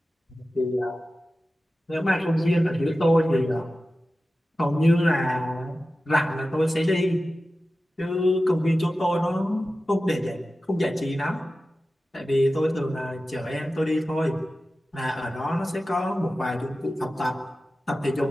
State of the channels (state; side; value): normal; both; correlation 0.94